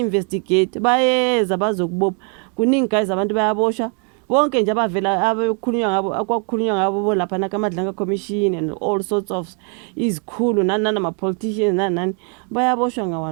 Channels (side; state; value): left; quieter; 38.8 dB